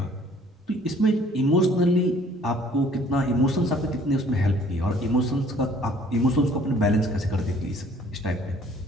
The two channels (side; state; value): both; normal; correlation 0.56